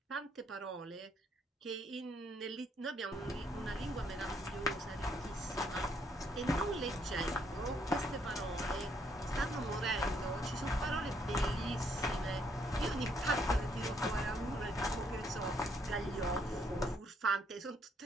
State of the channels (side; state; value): both; normal; correlation 0.71